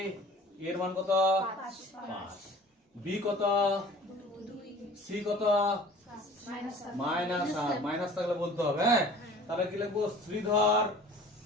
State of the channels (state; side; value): normal; both; correlation 0.46